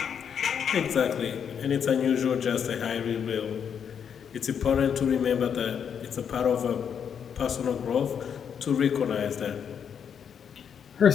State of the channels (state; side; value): quieter; right; 7.7 dB